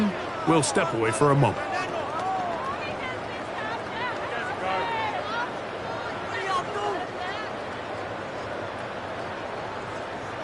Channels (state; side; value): identical; both; correlation 1.00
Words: we'll step away for a moment.